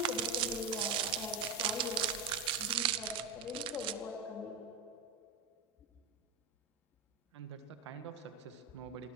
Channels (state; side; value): quieter; left; 4.8 dB